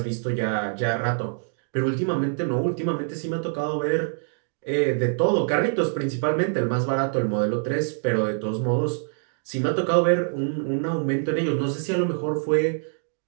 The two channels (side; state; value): left; silent; digital silence